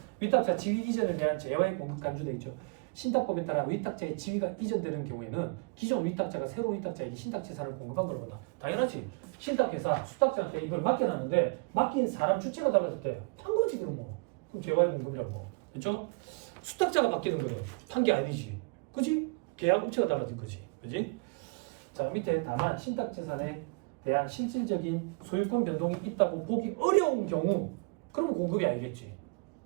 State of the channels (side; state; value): left; quieter; 31.0 dB